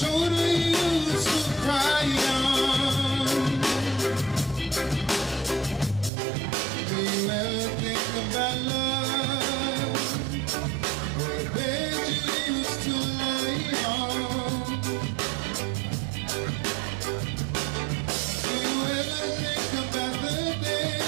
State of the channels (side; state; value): left; drops out; at 6.1 s